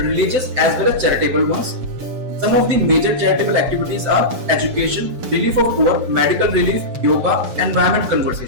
as well as charitable ones. Some of the major charitable activities are education, relief of poor, medical relief, yoga, environment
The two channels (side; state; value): left; late; 6.8 ms